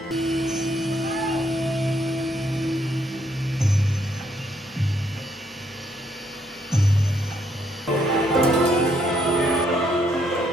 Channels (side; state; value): both; normal; correlation 0.72